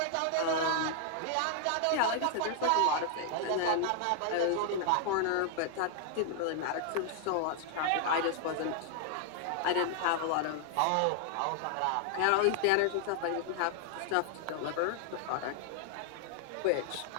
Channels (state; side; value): different; both; correlation 0.00